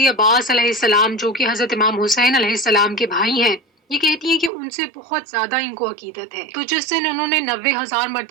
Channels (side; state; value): left; drops out; at 4.5 s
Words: عباس علیہ السلام جو کہ حضرت امام حسین علیہ السلام کے بھائی ہیں، یہ کہتی ہیں کہ ان سے بہت زیادہ ان کو عقیدت ہے۔ تو جس دن انہوں نے 90,000